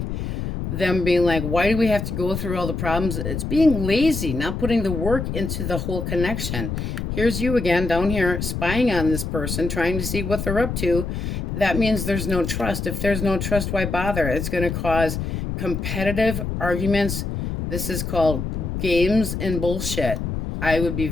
them being like, why do we have to go through all the problems? It's being lazy, not putting the work into the whole connection. Here's you again down here spying on this person, trying to see what they're up to. That means there's no trust. If there's no trust, why bother? It's going to cause competitive arguments. This is called games and bullshit. I would be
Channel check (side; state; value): left; noise; rumble, 4 dB below the sound